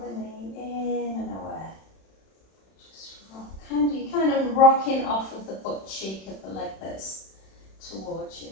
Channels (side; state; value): right; late; 31 ms